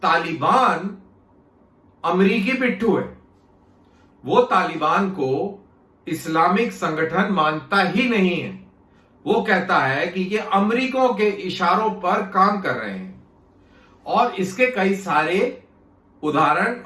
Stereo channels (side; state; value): both; identical; correlation 1.00